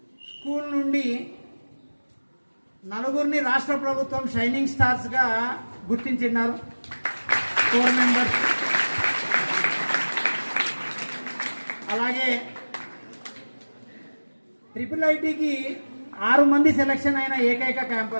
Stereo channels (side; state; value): both; inverted; correlation -1.00